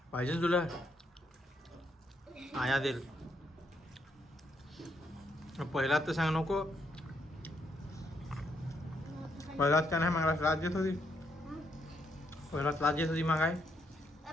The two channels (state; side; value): normal; both; correlation 0.75